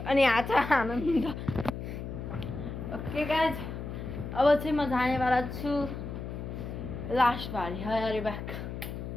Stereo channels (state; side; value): noise; left; hum, 7 dB below the sound